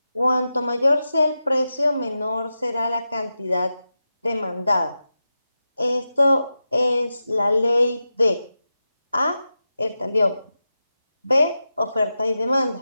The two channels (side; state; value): both; inverted; correlation -0.91